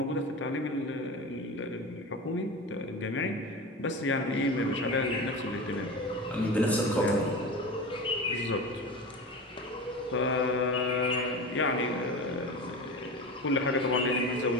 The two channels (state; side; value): normal; both; correlation 0.28